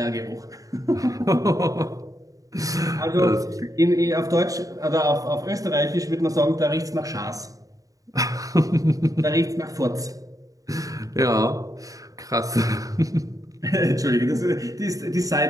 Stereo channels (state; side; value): late; left; 0.17 ms